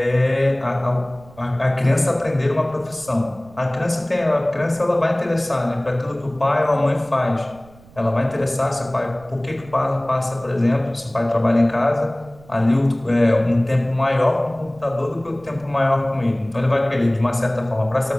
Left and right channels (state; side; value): noise; right; rumble, 24 dB below the sound